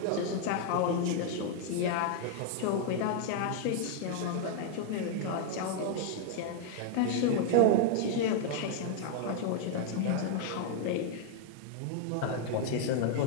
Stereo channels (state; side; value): different; both; correlation 0.00